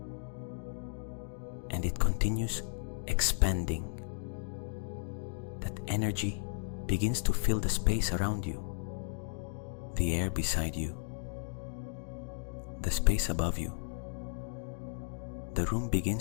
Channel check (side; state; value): right; silent; digital silence